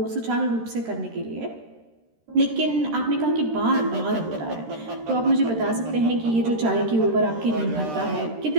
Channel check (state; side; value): late; left; 13 ms